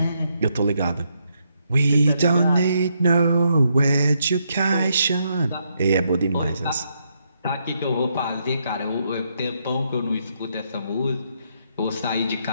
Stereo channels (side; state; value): both; inverted; correlation -0.77